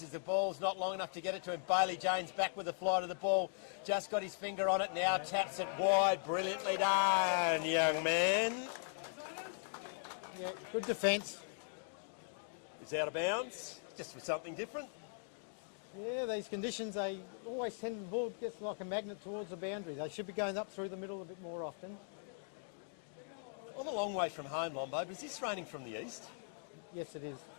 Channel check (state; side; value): silent; right; digital silence